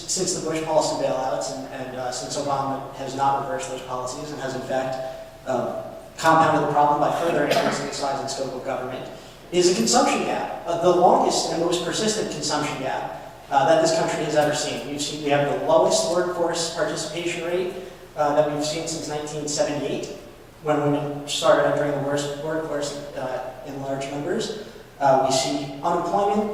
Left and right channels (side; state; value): both; identical; correlation 1.00